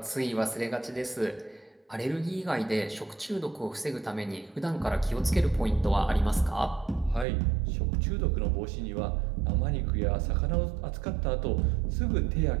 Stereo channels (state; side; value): drops out; left; at 7.2 s